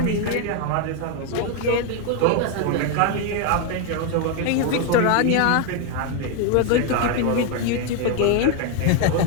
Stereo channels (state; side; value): different; both; correlation 0.01